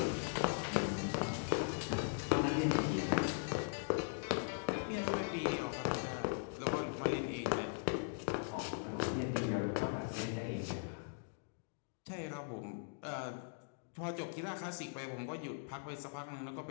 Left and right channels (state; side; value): silent; right; digital silence